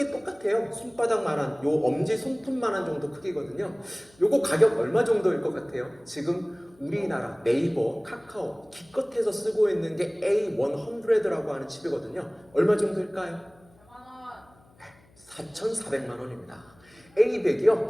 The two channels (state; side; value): noise; left; hum, 29 dB below the sound